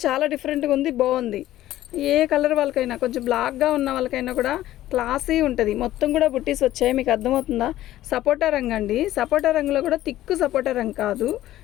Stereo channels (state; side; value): quieter; right; 14.3 dB